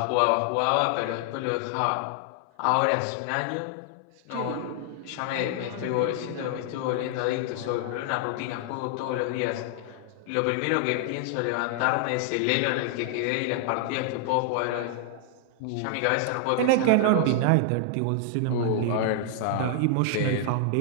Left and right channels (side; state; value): both; different; correlation 0.00